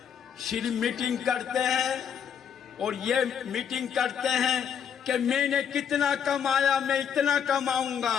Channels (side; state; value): right; quieter; 8.0 dB